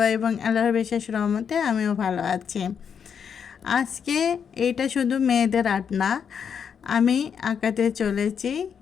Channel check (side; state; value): right; quieter; 7.2 dB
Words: এবং আল্লাহর বিশেষ রহমতে আমিও ভালো আছি। আজকে এটা শুধু মেয়েদের আর্ট না, আমি আঁকাতে চলেছি